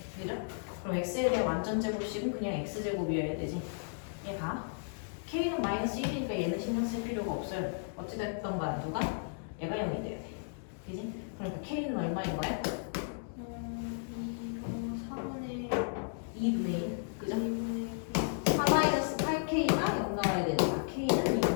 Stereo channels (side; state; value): right; silent; digital silence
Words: 그죠? 그럼 x에 대한 완전 제곱식은 그냥 x제곱이어야 되지. 얘가 k는 마이너스 1이니까 얘는 신경 쓸 필요가 없어요. 어찌됐든 간 누가? 얘가 0이 돼야 돼. 그지? 그러니까 k는 얼마인 거야? 2분의 1. 그죠? 4-8k가 0 나와야 되니까 k는